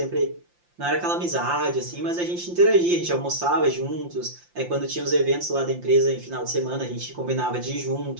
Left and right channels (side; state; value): left; late; 5.7 ms